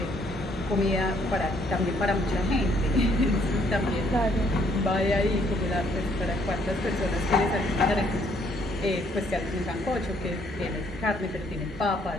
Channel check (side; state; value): both; normal; correlation 0.67